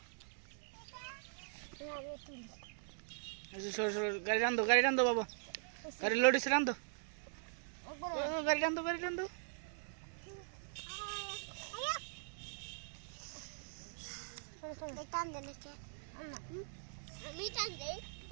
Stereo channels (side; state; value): left; silent; digital silence